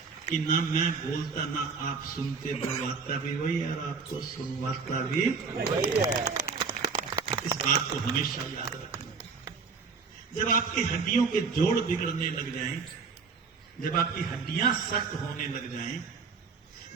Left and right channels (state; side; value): quieter; left; 5.1 dB